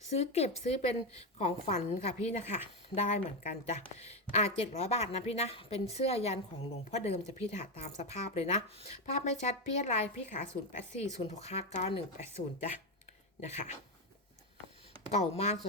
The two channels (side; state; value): both; normal; correlation 0.10